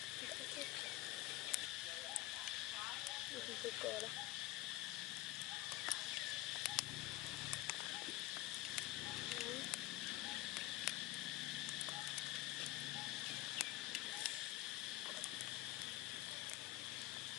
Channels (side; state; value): right; quieter; 17.2 dB